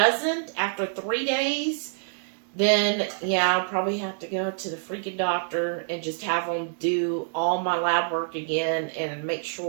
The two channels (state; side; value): silent; left; digital silence